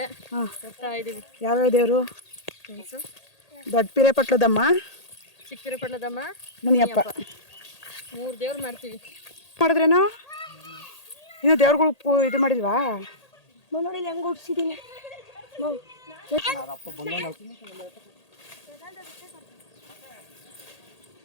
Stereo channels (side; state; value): right; late; 1.8 ms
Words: ಹೋಗ್ತಾ ಇದೀವಿ. ಯಾವ್ಯಾವ ದೇವರು? ದೊಡ್ಡ ಪಿರೇಪಟ್ಲದಮ್ಮ, ಚಿಕ್ಕ ಪಿರೇಪಟ್ಲದಮ್ಮ, ಮುನಿಯಪ್ಪ, 3 ದೇವ್ರು ಮಾಡ್ತೀವಿ. ಮಾಡಿದ್ರೇನು ಇನ್ನು ದೇವ್ರುಗಳು ಇದು ಮಾಡಿದ್ವಾ? ನೋಡಿ ಹೆಂಗ್ ಹುಡ್ಸಿದೀನಿ.